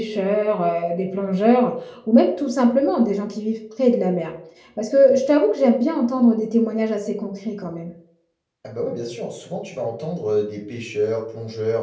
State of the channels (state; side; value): identical; both; correlation 1.00